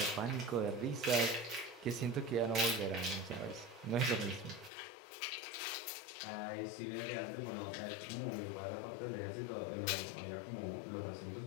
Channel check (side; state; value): right; drops out; at 4.7 s